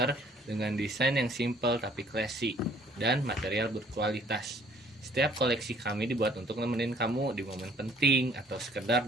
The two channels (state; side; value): normal; both; correlation 0.59